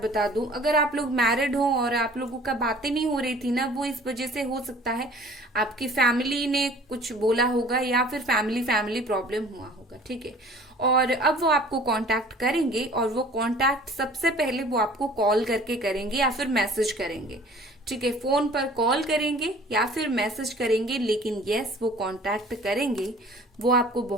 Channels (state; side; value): normal; both; correlation 0.49